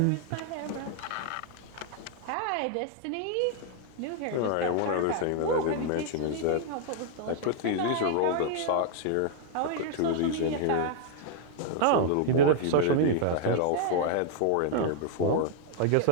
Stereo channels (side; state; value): both; different; correlation 0.00